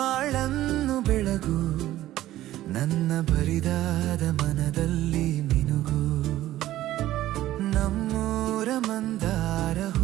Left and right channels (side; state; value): left; quieter; 14.4 dB